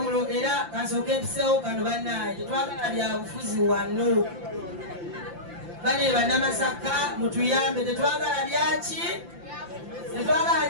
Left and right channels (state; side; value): late; left; 5.8 ms